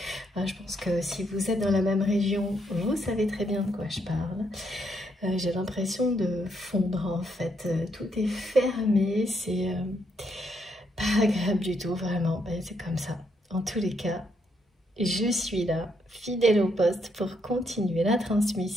Je pense que si vous êtes dans la même région, vous savez très bien de quoi je parle. J'ai l'impression de fondre en fait. Tout est fermé, c'est pas agréable du tout, vraiment. C'est comme ça. En tous les cas, je suis là, fidèle au poste, pour continuer la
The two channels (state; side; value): normal; both; correlation 0.75